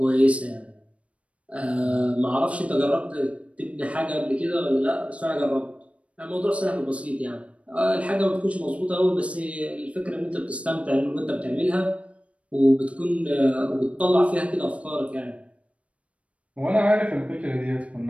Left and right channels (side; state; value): left; late; 0.063 ms